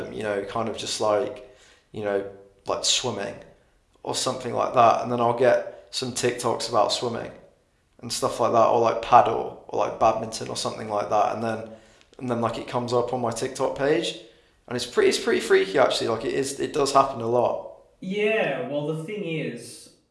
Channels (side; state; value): both; identical; correlation 1.00